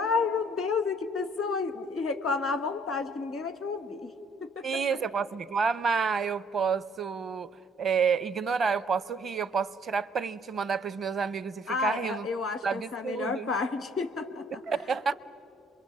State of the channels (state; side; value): normal; both; correlation 0.62